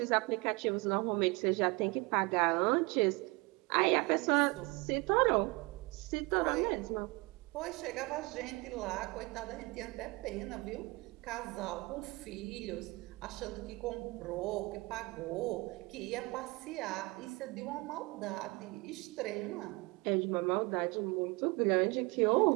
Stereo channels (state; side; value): quieter; left; 25.6 dB